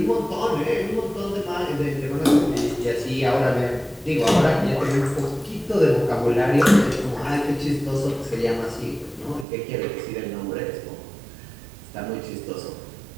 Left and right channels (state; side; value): drops out; left; at 9.5 s